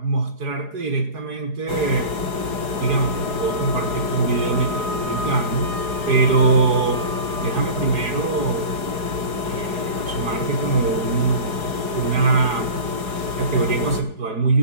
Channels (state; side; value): late; left; 4.8 ms